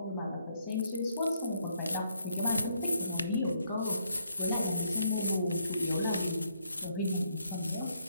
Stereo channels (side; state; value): both; inverted; correlation -0.72